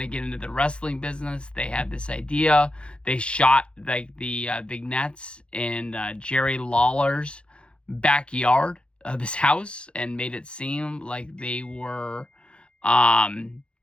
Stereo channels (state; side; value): late; right; 0.057 ms